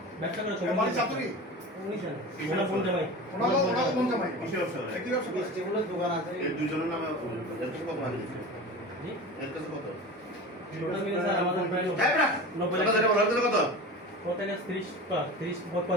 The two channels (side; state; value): both; normal; correlation 0.32